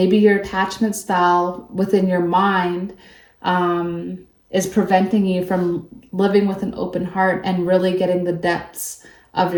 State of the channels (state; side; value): identical; both; correlation 1.00